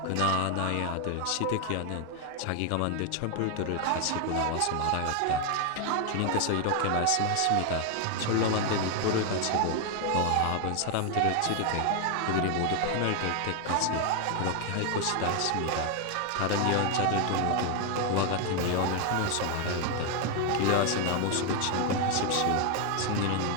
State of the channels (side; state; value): both; different; correlation 0.01